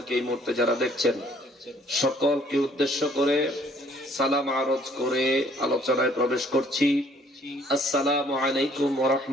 এই মুহূর্তে যারা দেখছেন, সকলকে উদ্দেশ্য করে সালাম আরজ করে আলোচনায় প্রবেশ করছি। আসসালামু আলাইকুম ওয়া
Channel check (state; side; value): normal; both; correlation 0.61